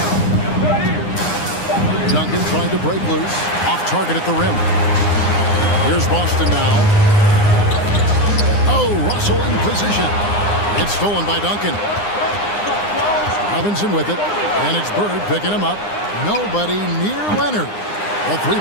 Duncan trying to break loose. Off target at the rim. Here's Boston now. Oh, Russell in position. It's stolen by Duncan. Robinson with it. And it's Bird picking him up. Nobody near Leonard. A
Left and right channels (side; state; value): right; late; 9.8 ms